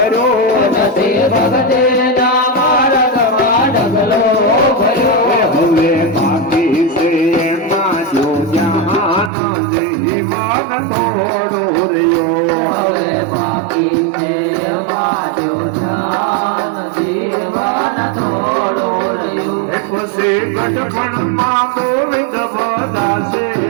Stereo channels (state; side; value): drops out; left; at 9.3 s